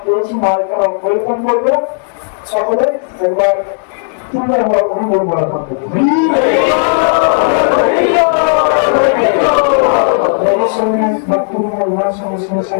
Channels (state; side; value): silent; right; digital silence